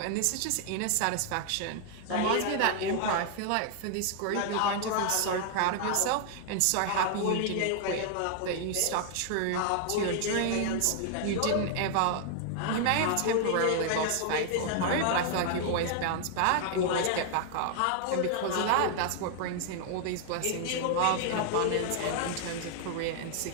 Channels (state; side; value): different; both; correlation 0.00